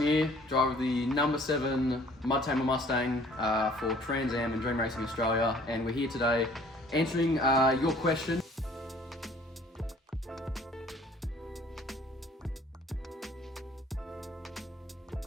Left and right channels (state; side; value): normal; both; correlation 0.55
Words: driver of the number 7 MUDTAMER Mustang for Trans Am and Dream Racing Australia, and we're here today answering your question.